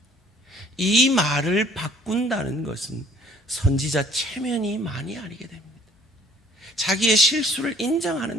이 말을 바꾼다는 것은 선지자 체면이 많이 아니게 됩니다. 자기의 실수를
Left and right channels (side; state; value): both; normal; correlation 0.57